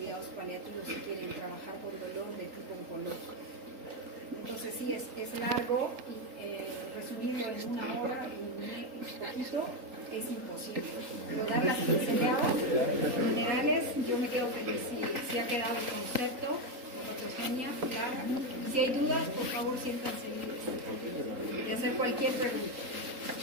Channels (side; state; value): left; late; 3.8 ms